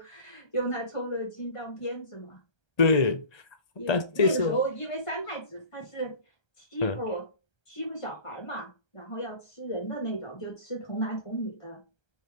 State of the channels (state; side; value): late; right; 1.3 ms